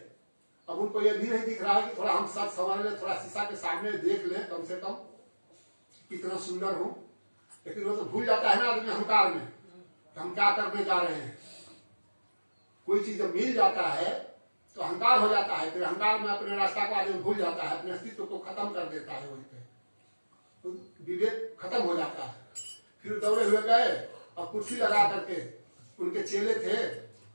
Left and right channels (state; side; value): inverted; both; correlation -1.00